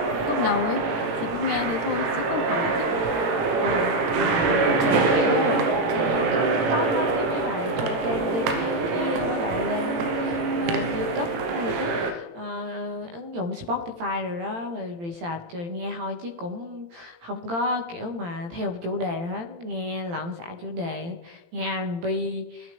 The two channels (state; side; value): late; left; 18 ms